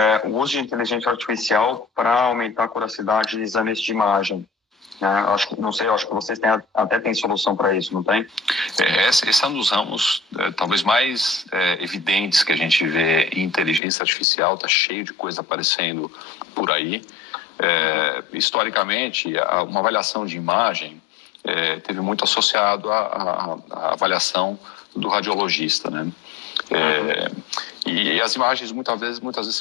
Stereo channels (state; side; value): drops out; right; at 13.8 s